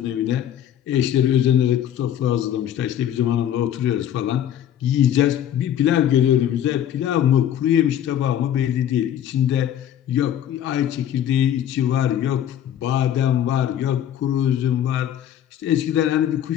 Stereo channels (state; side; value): quieter; right; 10.5 dB